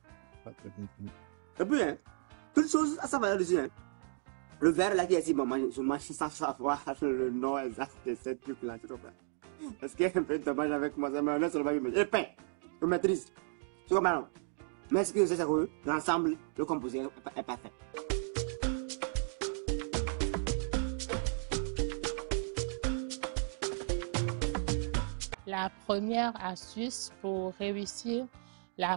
Et puis, hein, toute chose, ça va dessus, hein. Le verre là qui est ici, bon, moi, je mange sans savoir le nom exact de ce truc-là, tu comprends? Parce que un peu de dommage avec moi, ça mayonnaise, ça va me mettre. Et pain, je maîtrise. Tu comprends, non? Mais ce que je sais, c'est que l'ensemble, le composé est parfait. La première astuce pour réussir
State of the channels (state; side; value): silent; left; 55 dB below the other